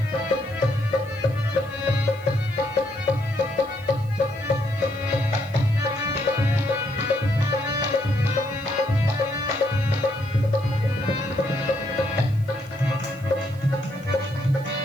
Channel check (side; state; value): right; noise; hiss, 26 dB below the sound